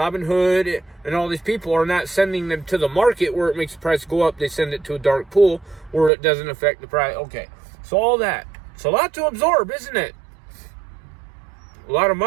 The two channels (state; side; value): drops out; left; at 6.1 s